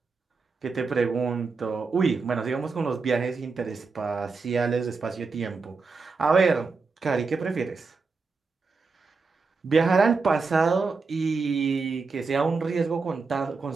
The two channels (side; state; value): left; quieter; 4.4 dB